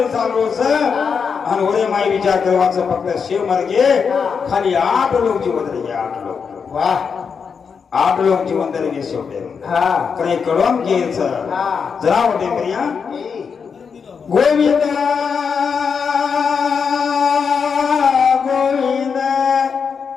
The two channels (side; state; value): right; quieter; 6.1 dB